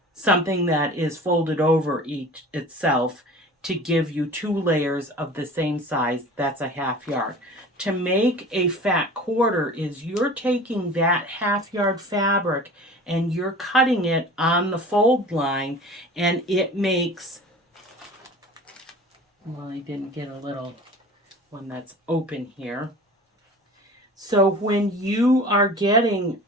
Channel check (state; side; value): normal; both; correlation 0.41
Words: something that is folded over itself, to give you 2 layers of the same size. That's a half yard. To make a fat quarter is you're taking that half yard fabric and you're cutting it on the fold line, and it makes, well, I didn't get a little one that's open here. So when you are getting